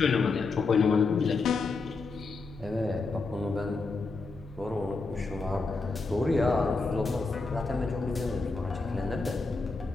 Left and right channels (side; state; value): right; quieter; 4.0 dB